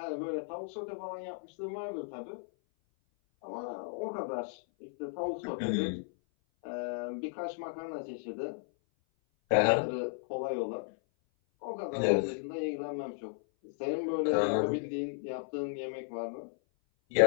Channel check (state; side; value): silent; right; 55 dB below the other